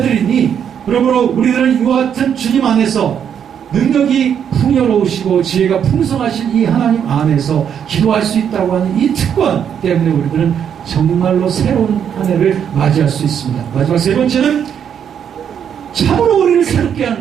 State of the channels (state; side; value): quieter; left; 8.3 dB